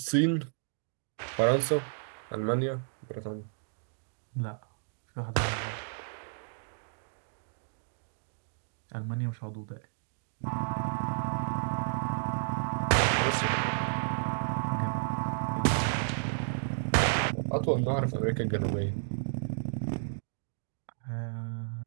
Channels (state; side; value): silent; left; digital silence